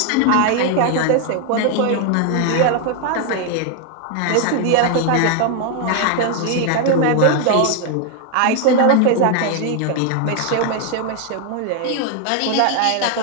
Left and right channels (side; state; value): both; different; correlation 0.01